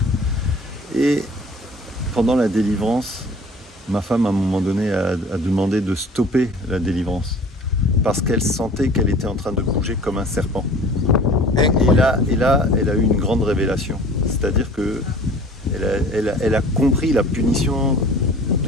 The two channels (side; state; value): both; normal; correlation 0.46